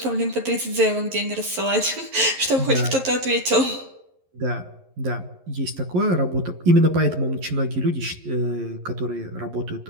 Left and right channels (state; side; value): late; left; 11 ms